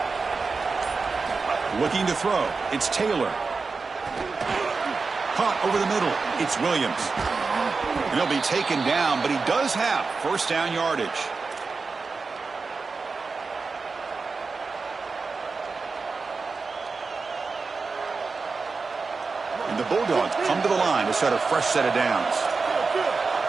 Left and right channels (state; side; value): quieter; left; 4.4 dB